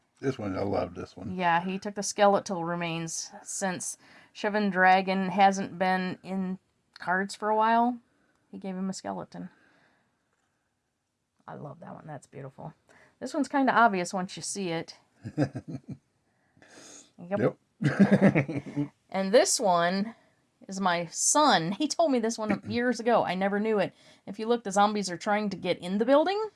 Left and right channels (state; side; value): identical; both; correlation 1.00